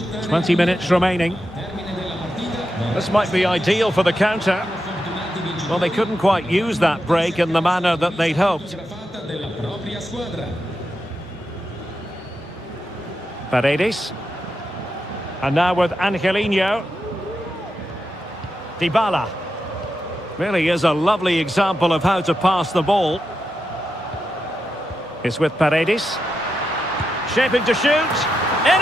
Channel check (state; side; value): normal; both; correlation 0.87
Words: 20 minutes remaining. This might be ideal for the counter. Well, they couldn't quite use that break in the manner that they'd hoped. Paredes. And now with Angelino. Dybala. Really is a lovely example of how to pass the ball. It's with Paredes. Shaping to shoot. In